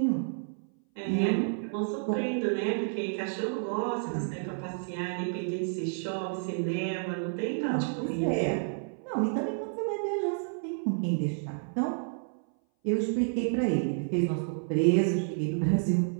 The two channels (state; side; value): silent; left; 58 dB below the other